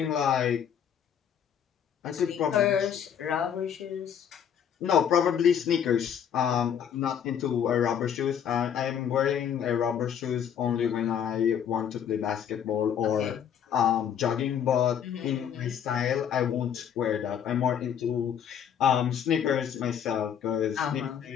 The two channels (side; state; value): right; quieter; 8.6 dB